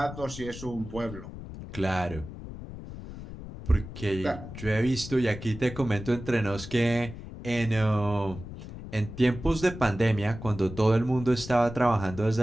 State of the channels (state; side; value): noise; left; rumble, 12 dB below the sound